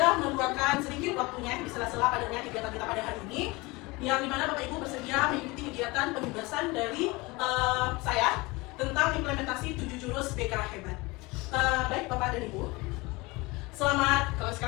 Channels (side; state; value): right; quieter; 23.8 dB